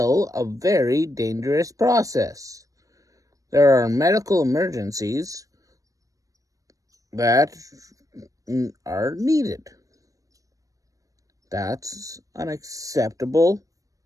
a very dangerous process. There are medical emergencies that are needed. That's an acceptable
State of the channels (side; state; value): left; late; 0.16 ms